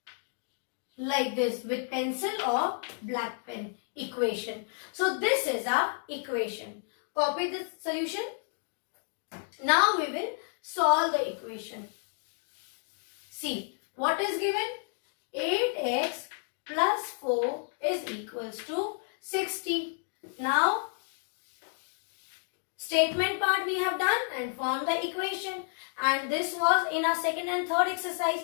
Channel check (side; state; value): right; silent; 57 dB below the other